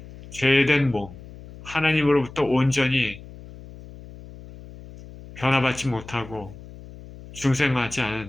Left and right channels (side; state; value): left; noise; hum, 17 dB below the sound